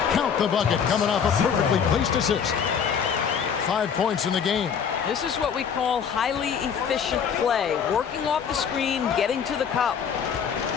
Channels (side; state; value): right; quieter; 7.2 dB